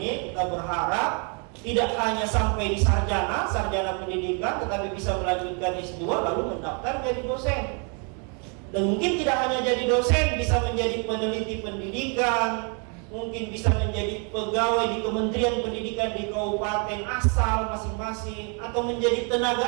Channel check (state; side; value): quieter; left; 37.6 dB